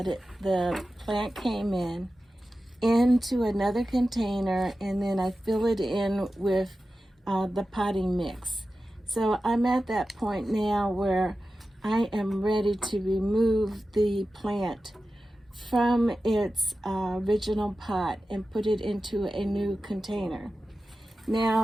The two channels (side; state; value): both; normal; correlation 0.94